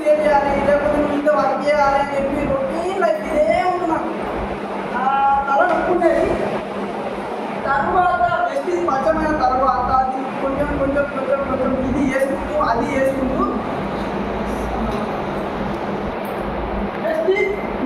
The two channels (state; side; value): identical; both; correlation 1.00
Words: లేకపోతే నువ్వు ఇంత వర్క్ చేయాలి అని చెప్పి రొటీన్ లైఫ్ ఇదే ఉంటున్నాను. తల నొప్పుండేది. తర్వాత బెస్ట్ స్వచ్ఛమైన తర్వాత అది కొంచెం కొంచెం కొంచెం కొంచెం ఇది చేసుకుంటూ అది చేసుకుంటూ బెస్ట్